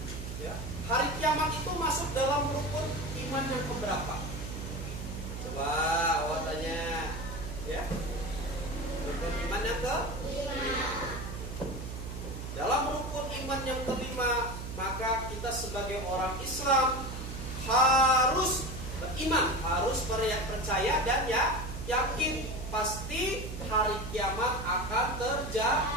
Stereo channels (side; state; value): right; noise; hum, 7 dB below the sound